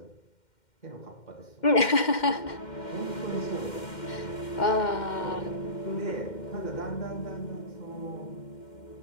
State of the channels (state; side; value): late; right; 2.1 ms